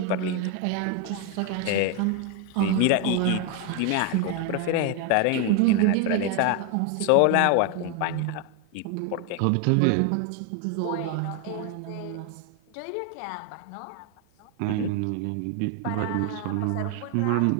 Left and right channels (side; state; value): both; different; correlation 0.01